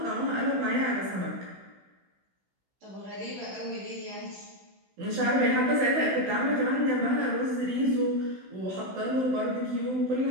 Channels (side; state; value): left; late; 16 ms